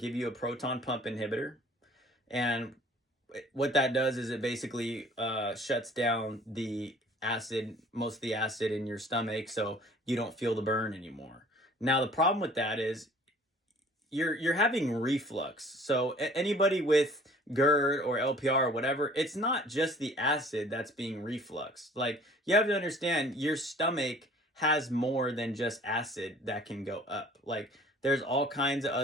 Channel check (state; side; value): normal; both; correlation 0.51